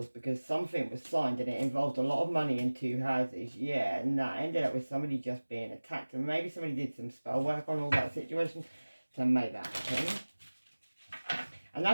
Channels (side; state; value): both; inverted; correlation -1.00